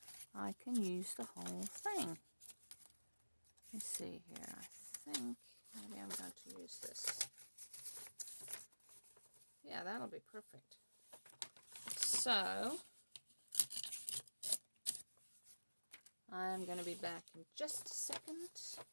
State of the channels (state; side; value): inverted; both; correlation -1.00